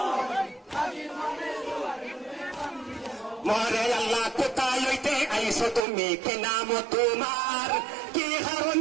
মরে আল্লাহ কোথায় হইতে আইসো তুমি কে নাম তোমার কি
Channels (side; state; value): left; drops out; at 5.8 s